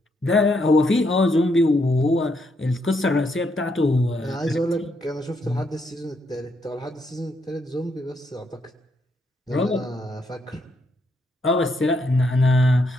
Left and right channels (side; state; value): both; normal; correlation 0.76